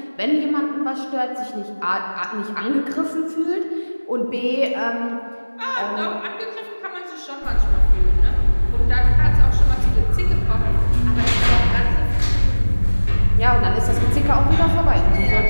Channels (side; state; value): both; inverted; correlation -1.00